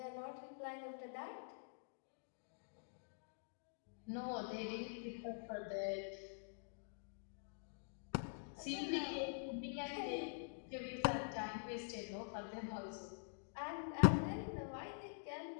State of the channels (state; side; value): silent; right; digital silence